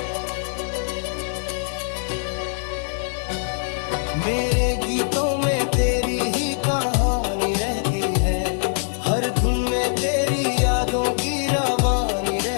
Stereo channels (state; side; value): silent; right; 64 dB below the other